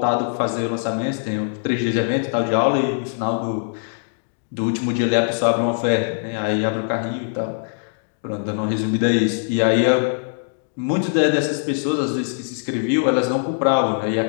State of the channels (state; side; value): silent; right; digital silence